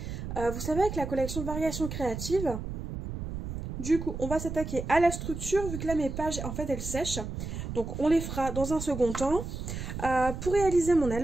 Vous savez, avec la collection Variations Créatives. Du coup, on va s'attaquer à la structure, vu que là mes pages, en fait, elles sèchent. Donc on les fera dans un second temps. Pour réaliser mon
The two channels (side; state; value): right; noise; rumble, 6 dB below the sound